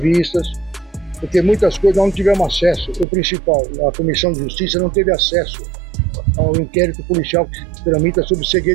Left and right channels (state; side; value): drops out; left; at 3.1 s